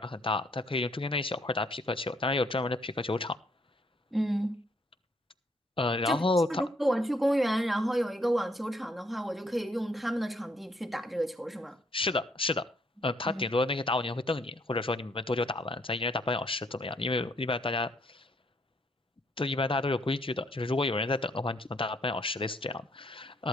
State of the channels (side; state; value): both; normal; correlation 0.68